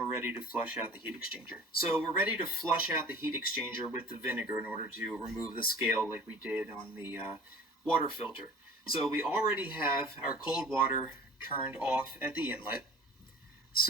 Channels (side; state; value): both; normal; correlation 0.43